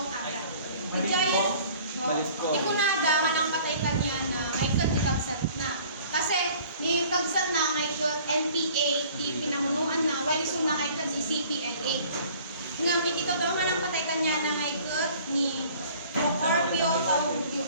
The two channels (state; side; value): inverted; both; correlation -0.51